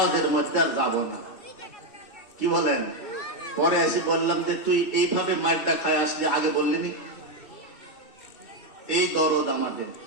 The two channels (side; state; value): right; late; 2.7 ms